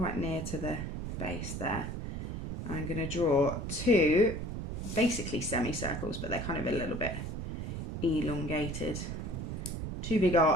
near to the base there. I'm going to draw two basically semicircles, but they're kind of a little bit elongated. Two big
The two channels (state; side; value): noise; right; rumble, 5 dB below the sound